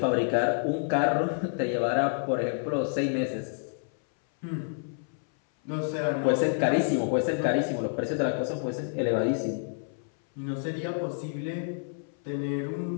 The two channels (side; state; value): right; silent; 59 dB below the other